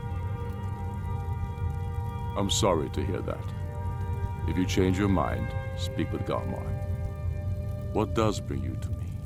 I'm sorry to hear that. If you change your mind, speak with Galmar. What does bring you to me?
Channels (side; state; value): both; identical; correlation 1.00